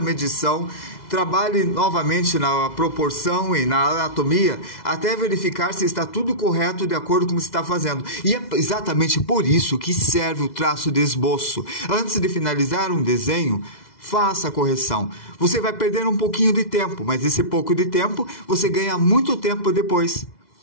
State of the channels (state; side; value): late; right; 2.0 ms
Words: medição, trabalhe novamente na proporção e na anatomia até verificar se está tudo correto de acordo com o que você está fazendo. E é exatamente por isso que serve o traço de esboço. Antes de finalizar um desenho, faça a correção. Você vai perder um pouquinho de tempo, mas esse pouco de tempo você ganha muito tempo depois.